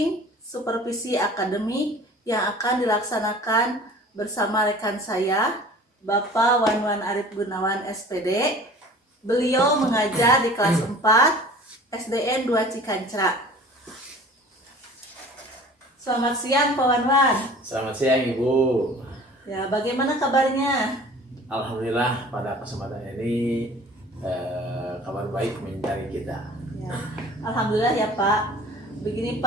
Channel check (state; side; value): normal; both; correlation 0.44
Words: supervisi akademik yang akan dilaksanakan bersama rekan saya, Bapak Wanwan Arif Gunawan SPD. Beliau mengajar di kelas 4 SDN 2 Cikancra. Selamat siang Pak Wanwan. Selamat siang Ibu. Ya, bagaimana kabarnya? Alhamdulillah pada kesempatan ini kabar baik mencari kita. Ya, Alhamdulillah ya Pak. Begini